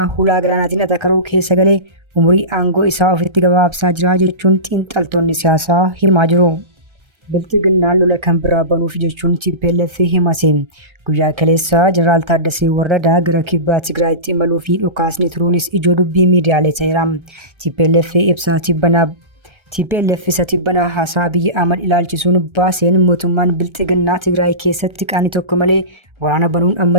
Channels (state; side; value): late; left; 1.3 ms